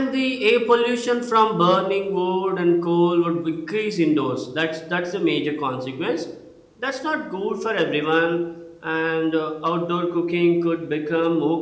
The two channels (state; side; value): identical; both; correlation 1.00